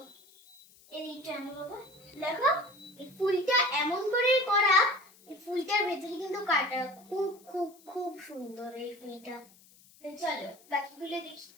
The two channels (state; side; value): noise; left; hiss, 26 dB below the sound